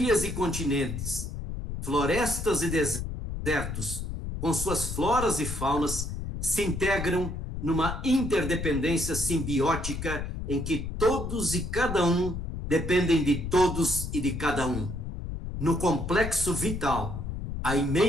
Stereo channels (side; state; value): left; noise; rumble, 5 dB below the sound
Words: e continentes, florestas e desertos, com suas floras e faunas, se integram numa interdependência simbiótica em que todos e cada um dependem de todos e de cada um. No complexo vital, a